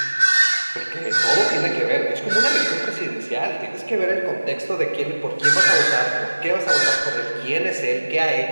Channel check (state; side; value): inverted; both; correlation -1.00